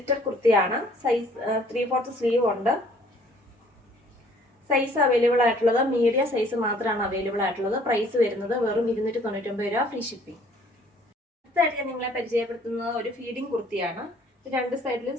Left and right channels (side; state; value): both; normal; correlation 0.58